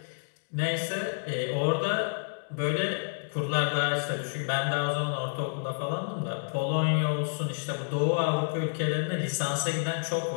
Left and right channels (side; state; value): right; silent; digital silence